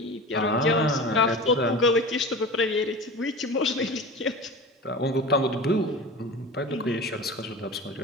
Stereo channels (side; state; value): both; normal; correlation 0.33